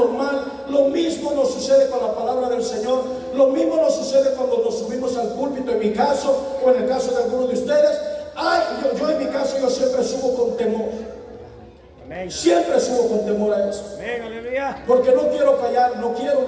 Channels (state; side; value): identical; both; correlation 1.00